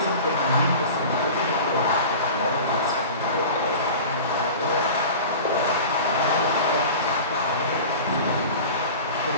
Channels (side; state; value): both; inverted; correlation -0.36